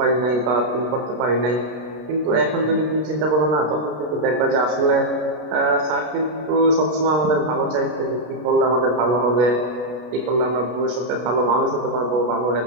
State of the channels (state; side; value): late; left; 32 ms